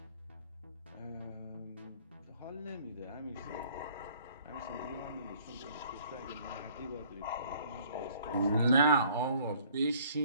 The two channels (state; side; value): inverted; both; correlation -0.58